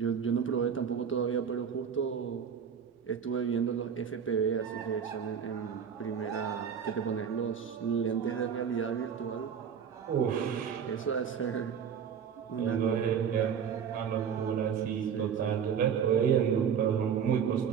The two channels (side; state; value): left; quieter; 7.5 dB